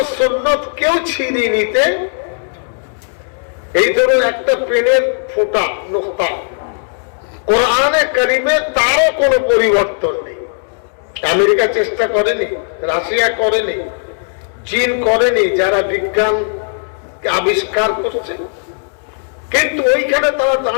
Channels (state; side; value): silent; right; 69 dB below the other